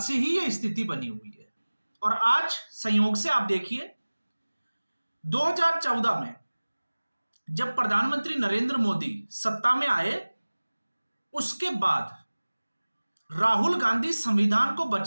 से ही यह स्थिति बनी हुई है और आज संयोग से आप देखिए 2014 में जब प्रधानमंत्री नरेंद्र मोदी सत्ता में आए, उसके बाद राहुल गांधी संविधान को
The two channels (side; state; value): both; inverted; correlation -1.00